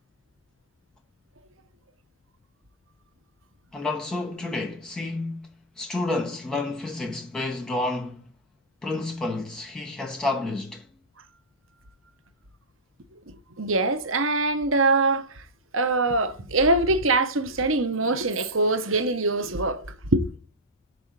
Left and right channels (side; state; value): both; normal; correlation -0.10